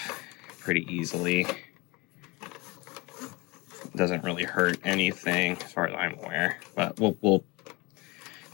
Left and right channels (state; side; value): quieter; right; 23.7 dB